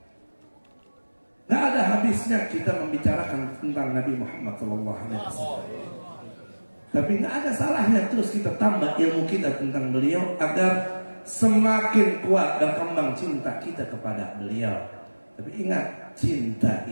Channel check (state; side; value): inverted; both; correlation -1.00